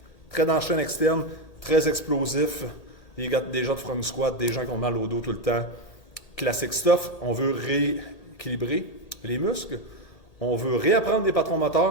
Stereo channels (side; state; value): right; late; 1.8 ms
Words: très dans la chaîne externe, très explosifs, des gens de front squat, des gens qui ont mal au dos tout le temps. Classic stuff, on veut rééquilibrer les muscles, on veut réapprendre des patrons